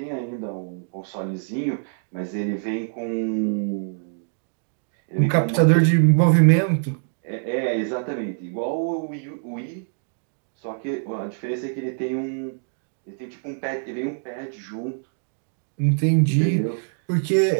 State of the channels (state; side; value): silent; left; digital silence